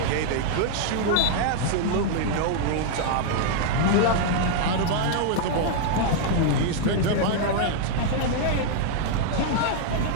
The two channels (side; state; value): both; different; correlation 0.00